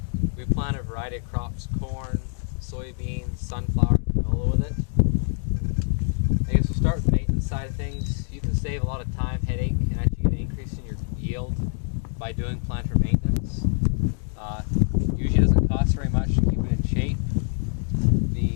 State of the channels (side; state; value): right; silent; 62 dB below the other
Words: We plant a variety of crops: corn, soybeans, sunflower, and canola with it. I guess we'll start with the maintenance side of things. You can save a lot of time, headache, and actually get an increase in your yield by doing planter maintenance. Usually doesn't cost very much to keep it in shape.